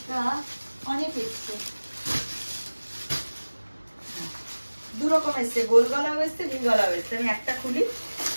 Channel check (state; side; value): inverted; both; correlation -1.00